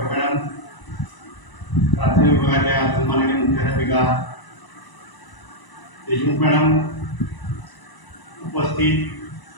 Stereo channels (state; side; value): late; right; 1.0 ms